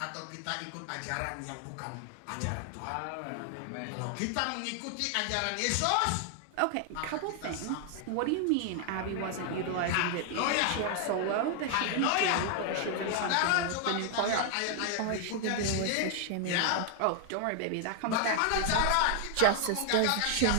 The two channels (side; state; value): both; different; correlation 0.00